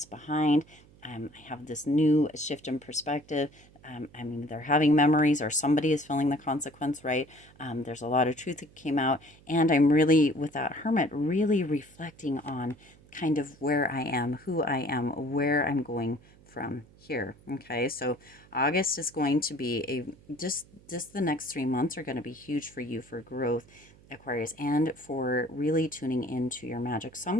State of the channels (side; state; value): right; noise; hum, 26 dB below the sound